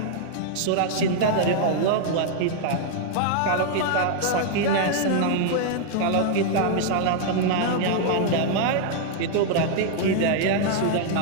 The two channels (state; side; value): different; both; correlation -0.01